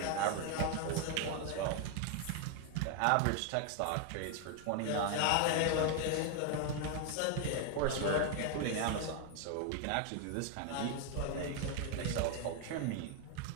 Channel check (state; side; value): different; both; correlation 0.01